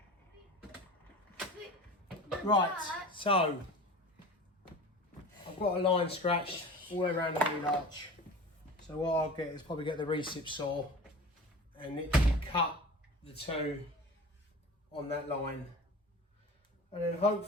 Right, so I've got a line scratched all the way around the wheel arch. So what I'll get is probably get the recip saw and literally cut the two on that line. And then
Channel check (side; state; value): both; normal; correlation 0.36